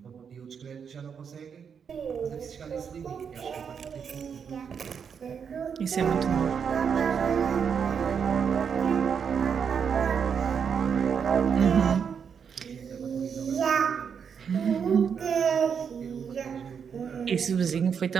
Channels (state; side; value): quieter; left; 6.9 dB